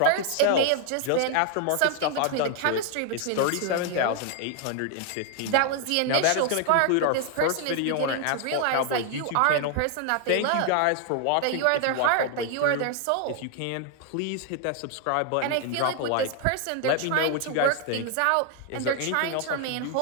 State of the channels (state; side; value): different; both; correlation 0.00